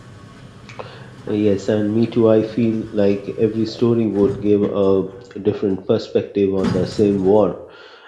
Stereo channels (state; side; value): identical; both; correlation 1.00